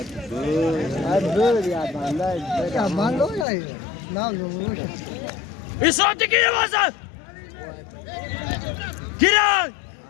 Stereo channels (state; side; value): drops out; right; at 3.5 s